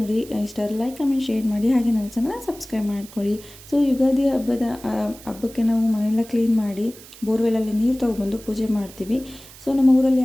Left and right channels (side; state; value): right; noise; hiss, 19 dB below the sound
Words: ಇಷ್ಟ ಲೈಕ್, ಕಮೆಂಟ್, ಶೇರ್ ಮಾಡಿ, ಹಾಗೆ ನನ್ನ ಚಾನಲ್ ಸಬ್ಸ್ಕ್ರೈಬ್ ಮಾಡ್ಕೊಳ್ಳಿ. ಸೊ ಯುಗಾದಿ ಹಬ್ಬಕ್ಕೆ ನಾವು ಮನೆಯೆಲ್ಲ ಕ್ಲೀನ್ ಮಾಡಿ ಬೋರ್ವೆಲಲ್ಲಿ ನೀರು ತೊಗೊಬಂದು ಪೂಜೆ ಮಾಡ್ತೀವಿ. ಸೊ ನಮ್ಮ ಊರಲ್ಲಿ